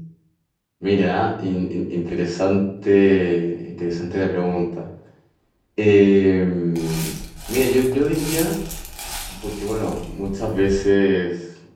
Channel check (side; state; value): both; identical; correlation 1.00